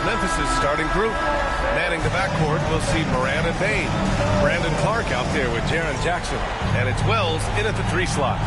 Memphis' starting group. Manning the backcourt, we'll see Moran and Bain. Brandon Clark out there with Jaren Jackson. And it's Wells in at the 3 slot.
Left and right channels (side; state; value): both; identical; correlation 1.00